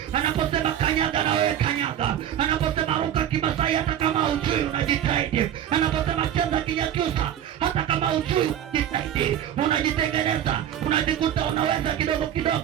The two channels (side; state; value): left; quieter; 10.4 dB